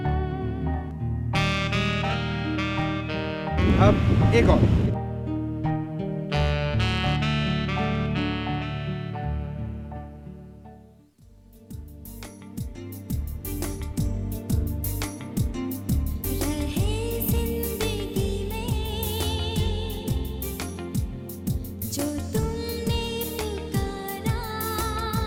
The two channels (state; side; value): identical; both; correlation 1.00